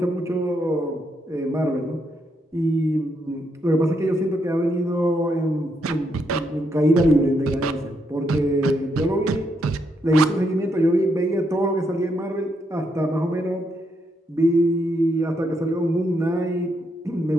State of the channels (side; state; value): both; normal; correlation 0.78